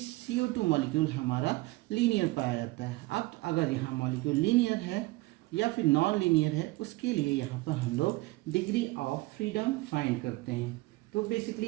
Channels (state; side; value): quieter; left; 21.1 dB